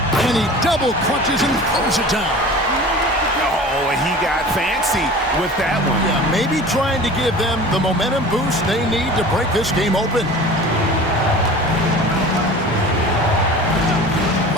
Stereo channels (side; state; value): both; normal; correlation 0.39